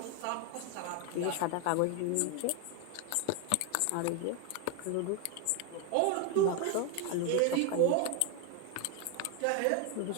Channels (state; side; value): different; both; correlation 0.01